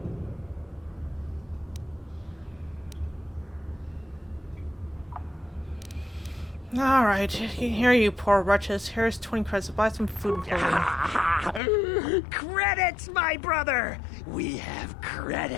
Alright, here you poor wretches. Here's 20 credits to buy some food and clothing. Credits, my brother! We have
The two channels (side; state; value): right; drops out; at 11.6 s